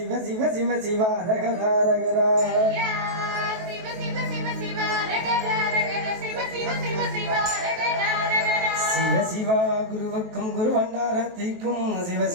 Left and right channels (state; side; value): late; left; 23 ms